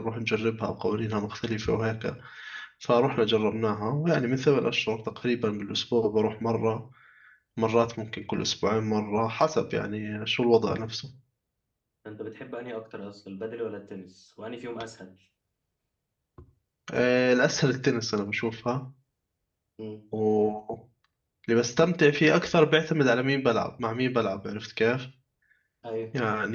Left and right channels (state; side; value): identical; both; correlation 1.00